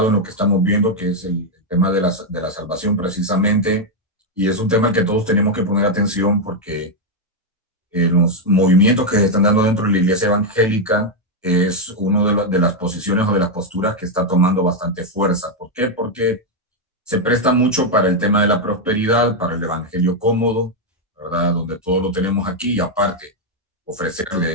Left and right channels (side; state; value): both; normal; correlation 0.01